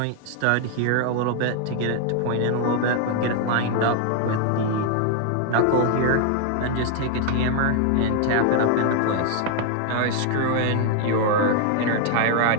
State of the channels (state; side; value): different; both; correlation 0.00